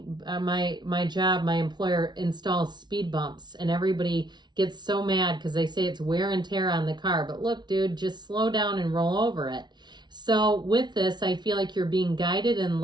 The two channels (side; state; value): left; late; 0.20 ms